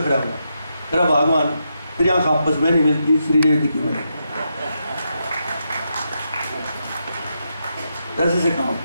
हुआ, तेरा भगवान तेरी आँख आपस में नहीं मिलती, श्रीदेवी की मिले कैसे से काम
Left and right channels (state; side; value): inverted; both; correlation -0.84